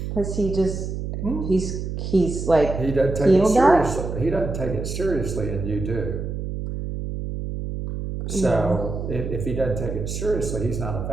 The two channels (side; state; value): right; noise; hum, 5 dB below the sound